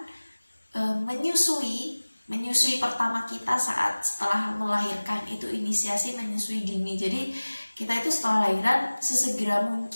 menyusui pertama kita setelah melahirkan, itu inisiasi menyusui dini. Jadi kita itu setelah lahiran sesegera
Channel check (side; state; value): both; inverted; correlation -1.00